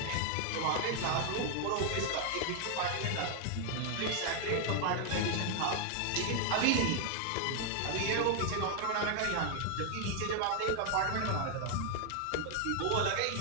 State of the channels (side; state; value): both; different; correlation 0.00